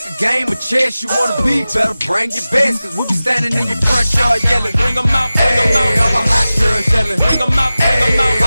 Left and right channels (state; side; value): inverted; both; correlation -0.96